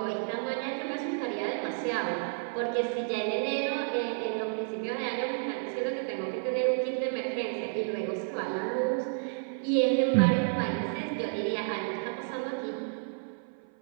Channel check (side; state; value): left; silent; 55 dB below the other